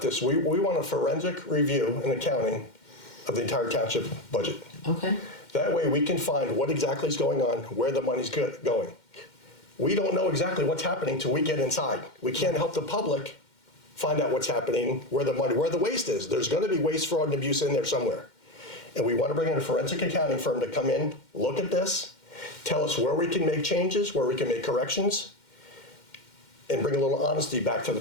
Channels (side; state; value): right; late; 2.1 ms